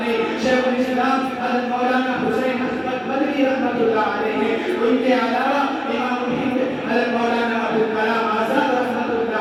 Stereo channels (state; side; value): identical; both; correlation 1.00